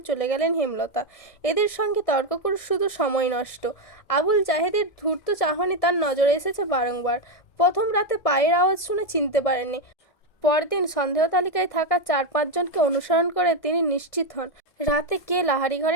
চলে গেলেন হেমলতা। এদের সঙ্গে তর্ক করে শুধু সময় নষ্ট। আবুল জাহেদের ধূর্ত চাহনি তার নজরে এসেছে বারংবার। প্রথম রাতে পায়ের আওয়াজ শুনে চিনতে পারেননি। পরদিন সন্দেহ তালিকায় থাকা 4-5 জনকে অনুসরণ করে তিনি নিশ্চিত হন রাতে কে লাহারি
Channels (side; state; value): right; late; 1.7 ms